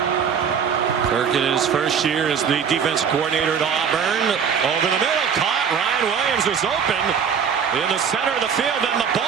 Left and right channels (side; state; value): left; quieter; 7.1 dB